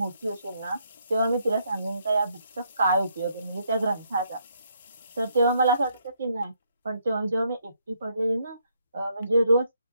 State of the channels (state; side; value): inverted; both; correlation -0.73